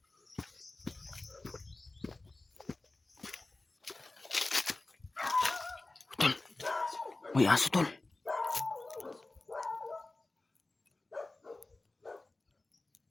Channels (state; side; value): quieter; right; 3.0 dB